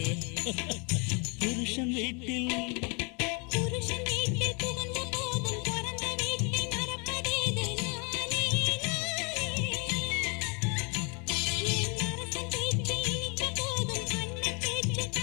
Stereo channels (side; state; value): right; quieter; 33.4 dB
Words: புருஷன் வீட்டில் புகுந்த போதும் பிறந்த வீட்டை மறப்பதேது நானே நானே. என் அரசன் பேச்சு இனித்த போதும் அண்ணன் பேச்சு